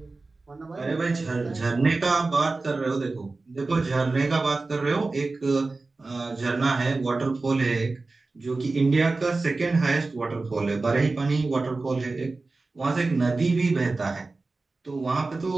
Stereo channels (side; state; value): left; quieter; 3.6 dB